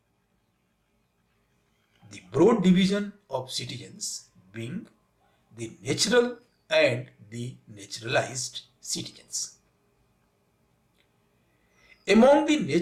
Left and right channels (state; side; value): identical; both; correlation 1.00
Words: The broad division of citizens being the natural and the naturalized citizens. Among the